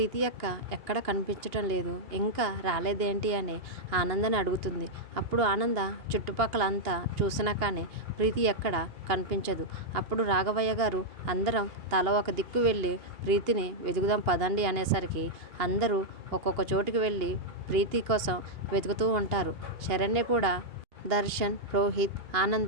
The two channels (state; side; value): late; left; 2.8 ms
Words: అక్క ఎక్కడ కనిపించటం లేదు, ఇంకా రాలేదేంటి అని ఆనందని అడుగుతుంది. అప్పుడు ఆనంద చుట్టుపక్కల అంతా చూసినా కానీ ప్రీతి ఎక్కడ కనిపించదు. అప్పుడు రాఘవయ్య గారు అందరం తల ఒక దిక్కు వెళ్ళి ప్రీతిని వెతుకుదాం పదండి అనేసరికి అందరూ ఒక్కొక్క చోటుకి వెళ్ళి ప్రీతి కోసం వెతుకుతూ ఉంటారు. శరణ్య కూడా, దర్శన్, రోహిత్,